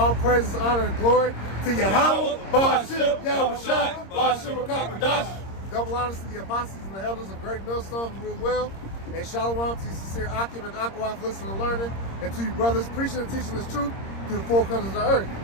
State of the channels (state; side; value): late; right; 26 ms